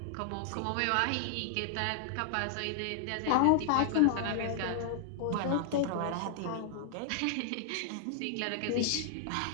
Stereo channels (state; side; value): different; both; correlation -0.01